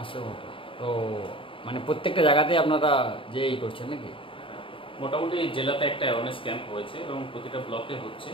কোটা। তো মানে প্রত্যেকটা জায়গাতে আপনারা যে করছেন নাকি? মোটামুটি জেলাতে একটা অ্যাওয়ারনেস ক্যাম্প হয়েছে এবং প্রতিটা ব্লকে হচ্ছে।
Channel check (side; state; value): right; late; 0.25 ms